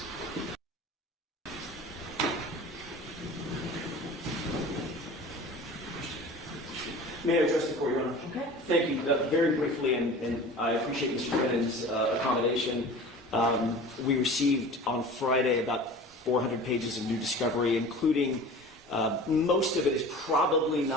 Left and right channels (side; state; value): both; normal; correlation 0.40